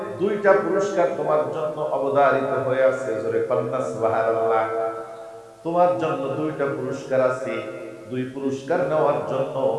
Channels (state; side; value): identical; both; correlation 1.00